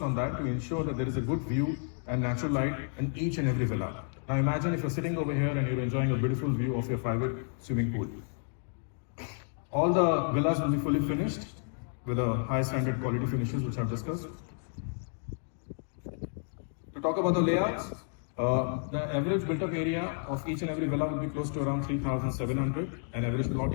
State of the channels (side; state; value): right; silent; 57 dB below the other